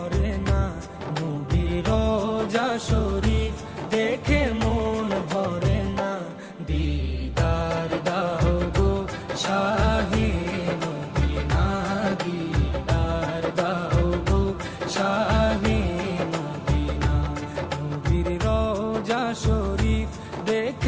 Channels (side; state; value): both; identical; correlation 1.00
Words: না, নবীর রোজা শরীফ দেখে মন ভরে না। দিদার দাও গো শাহে মদিনা, দিদার দাও গো শাহে মদিনা। নবীর রোজা শরীফ